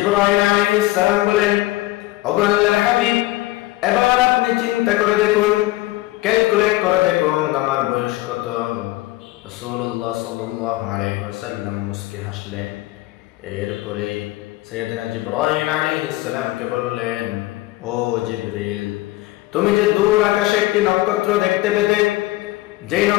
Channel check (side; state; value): right; quieter; 18.4 dB